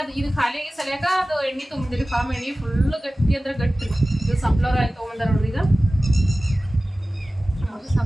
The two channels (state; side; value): normal; both; correlation 0.96